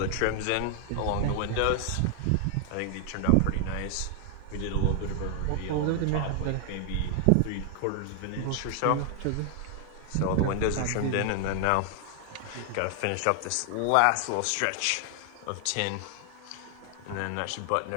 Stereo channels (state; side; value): different; both; correlation 0.00